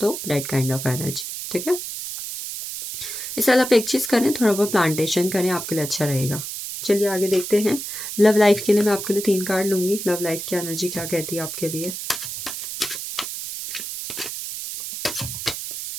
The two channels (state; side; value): noise; right; hiss, 7 dB below the sound